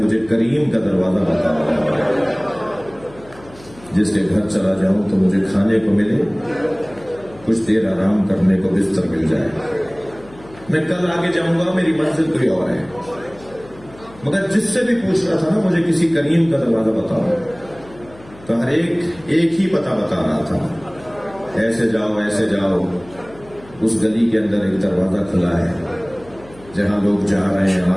کریم کا دروازہ بتاؤ، جس کے گھر چلا جاؤں تو مجھے کھانے کو ملے، کچھ دیر آرام کرنے کو بستر مل جائے، میں کل آگے جاؤں گا، میری منزل کوئی اور ہے۔ مگر جس سے بھی پوچھ رہا تھا نا مجھے کسی کریم کا دروازہ بتاؤ، تو ہر ایک ہی پتہ بتا رہا تھا، ایسے جاؤ ایسے جاؤ، اس گلی کے اندر ایک دروازہ کھلا ہے جہاں لوگ جا رہے ہیں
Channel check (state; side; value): noise; left; hum, 22 dB below the sound